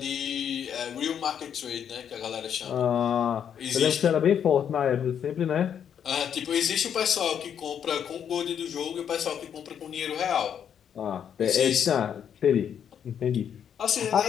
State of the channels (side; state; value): right; quieter; 8.5 dB